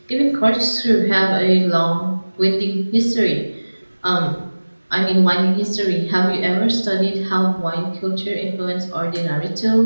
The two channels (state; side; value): inverted; both; correlation -1.00